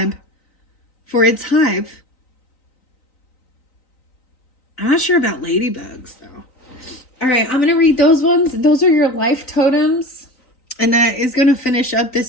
for its hive. I'm not sure about ladybugs, though. All right, I'm going to read those ones. Those are your life totems. And that is going to finish up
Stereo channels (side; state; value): right; late; 3.9 ms